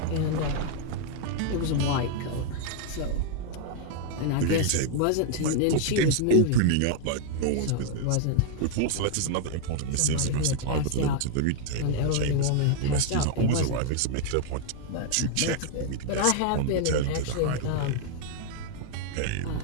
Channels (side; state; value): both; different; correlation 0.00